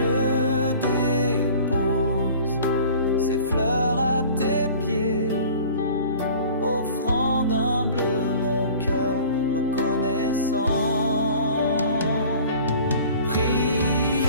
dépose ces fleurs à tes pieds, offrant d'humble mon cœur reconnaissant.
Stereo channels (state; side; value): inverted; both; correlation -0.46